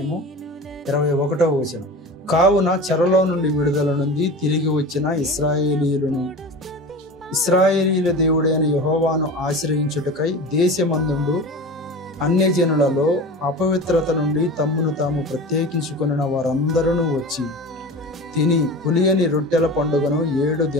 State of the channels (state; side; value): normal; both; correlation 0.33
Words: 21వ వచనం. కావున చెరలో నుండి విడుదల నుండి తిరిగి వచ్చిన ఇశ్రాయేలీయుల దేవుడైన యెహోవాను ఆశ్రయించుటకై దేశమందుండు అన్యజనులలో అపవిత్రత నుండి తమ్మును తాము ప్రత్యేకించుకొనిన వారందరూ వచ్చి తిని పులియని రొట్టెల పండుగను 7